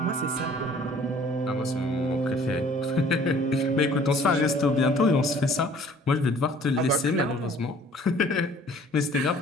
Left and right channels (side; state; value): both; normal; correlation 0.53